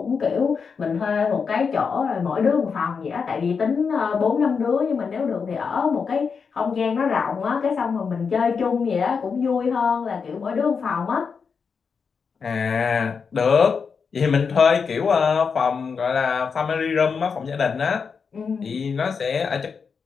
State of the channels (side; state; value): right; quieter; 5.7 dB